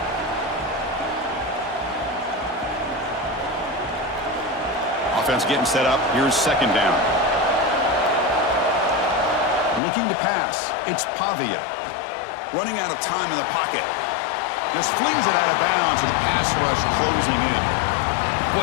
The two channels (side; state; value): right; drops out; at 9.8 s